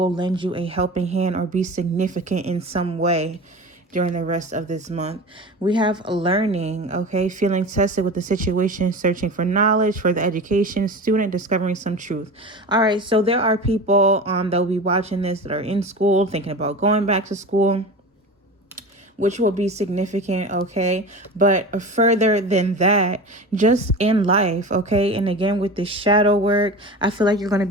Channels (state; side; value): normal; both; correlation 0.31